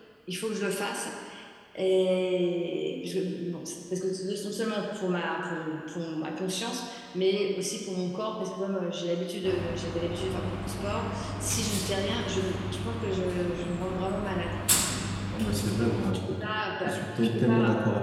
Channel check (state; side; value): identical; both; correlation 1.00